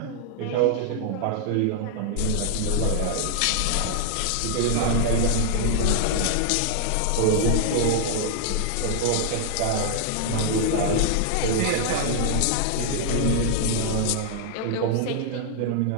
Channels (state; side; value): different; both; correlation 0.00